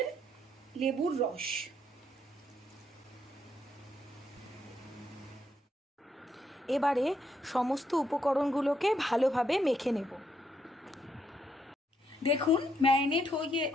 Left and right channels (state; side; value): normal; both; correlation 0.76